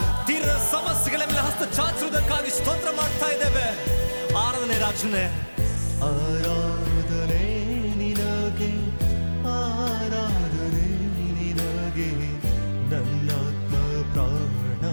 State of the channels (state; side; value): inverted; both; correlation -1.00